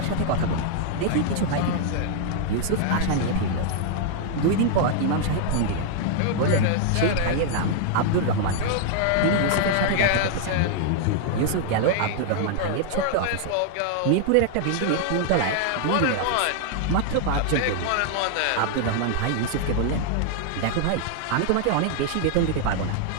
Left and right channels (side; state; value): both; different; correlation -0.01